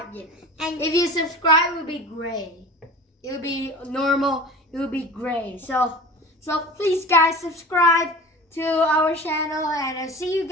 yet. And If you subscribe, it will be gray. It will be normal. It will be gray. So please, guys, subscribe to our channel, and I'll see you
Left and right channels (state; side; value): normal; both; correlation 0.37